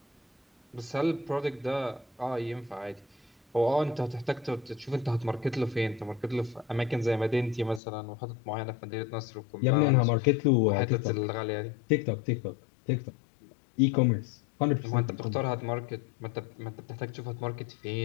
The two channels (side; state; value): right; drops out; at 7.8 s